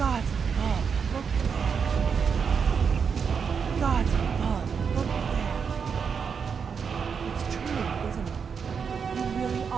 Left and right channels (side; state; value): left; quieter; 6.3 dB